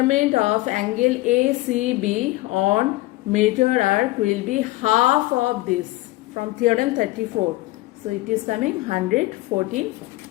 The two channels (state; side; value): quieter; right; 18.8 dB